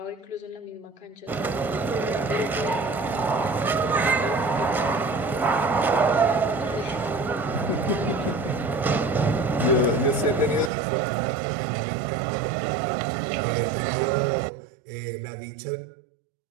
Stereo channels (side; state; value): left; drops out; at 10.7 s